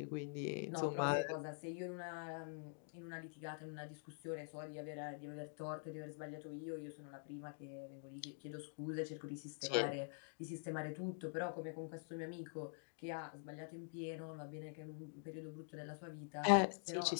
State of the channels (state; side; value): silent; right; digital silence